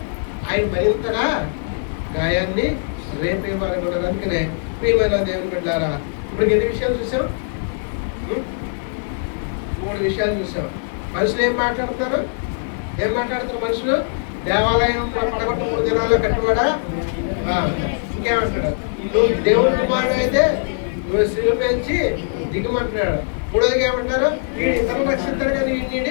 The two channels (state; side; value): silent; right; digital silence